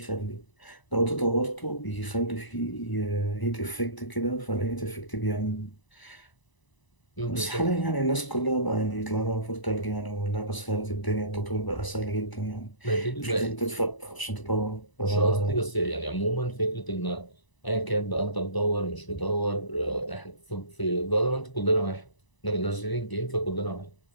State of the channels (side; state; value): right; late; 1.0 ms